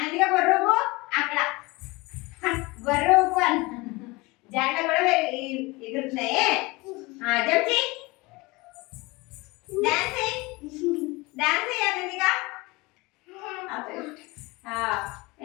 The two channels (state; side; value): quieter; right; 23.2 dB